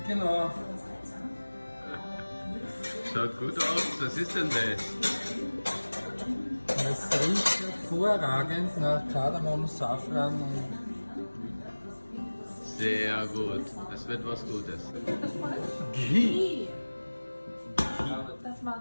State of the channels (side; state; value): both; inverted; correlation -1.00